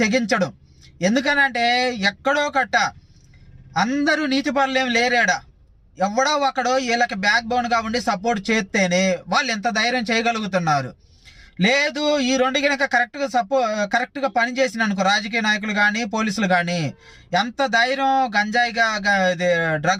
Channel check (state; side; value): identical; both; correlation 1.00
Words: తెగించడు. ఎందుకనంటే ఎక్కడో కట్ట అందరూ నీతిపరులు ఏం లేరాడా, ఎవడో ఒకడో వీళ్ళకి బ్యాక్ బోన్గా ఉండి సపోర్ట్ చేస్తేనే వాళ్ళు ఎంత ధైర్యం చేయగలుగుతున్నారు. లేదు ఈ రెండు కనుక కరెక్ట్గా పనిచేసిన అనుకో రాజకీయ నాయకులు కానీ పోలీసులు కానీ ఎంత ధైర్యం గంజాయిగా